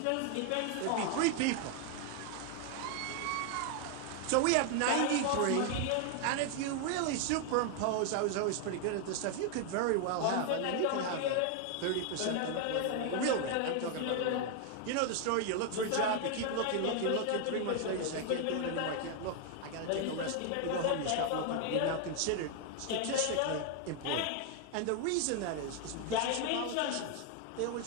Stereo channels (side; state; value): both; different; correlation 0.00